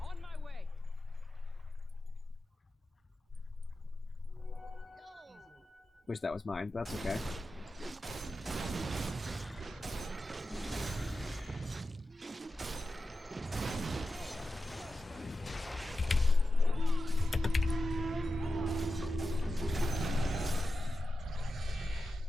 my way. Wish that was mine, but that's okay.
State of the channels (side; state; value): both; normal; correlation 0.92